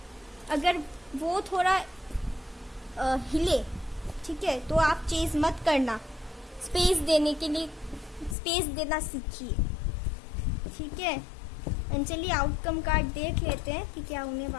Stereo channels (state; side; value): drops out; right; at 8.3 s